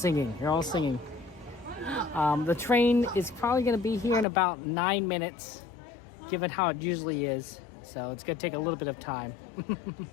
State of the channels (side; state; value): right; drops out; at 4.2 s